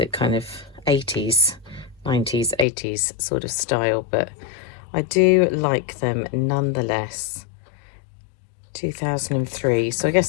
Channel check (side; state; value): right; drops out; at 2.7 s